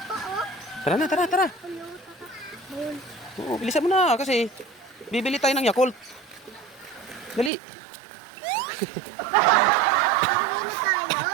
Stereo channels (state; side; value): drops out; left; at 7.5 s